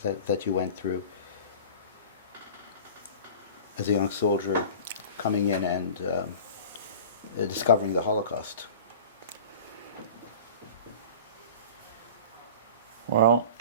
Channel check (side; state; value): both; inverted; correlation -0.38